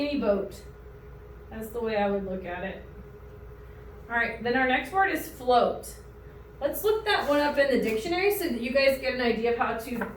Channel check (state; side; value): identical; both; correlation 1.00